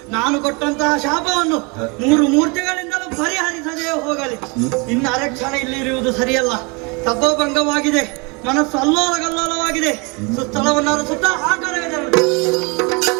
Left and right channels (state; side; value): quieter; left; 29.9 dB